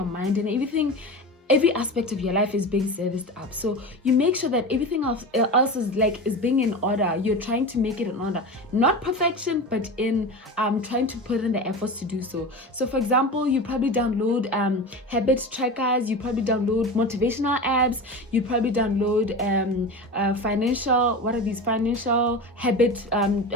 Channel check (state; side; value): normal; both; correlation 0.28